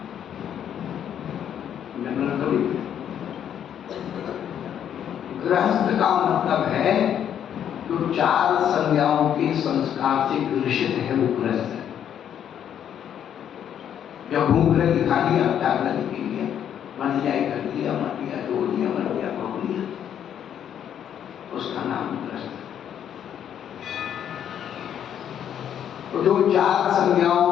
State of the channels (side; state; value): right; quieter; 9.4 dB